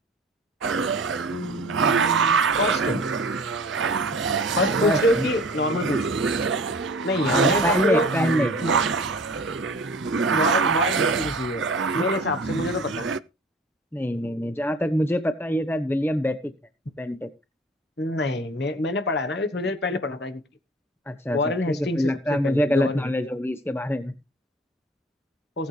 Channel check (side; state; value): both; normal; correlation 0.44